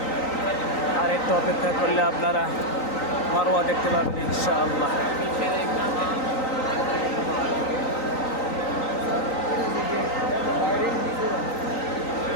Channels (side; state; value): right; late; 3.9 ms